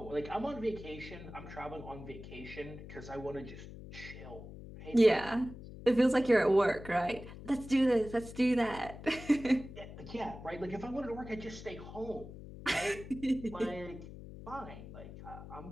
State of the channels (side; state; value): left; noise; hum, 13 dB below the sound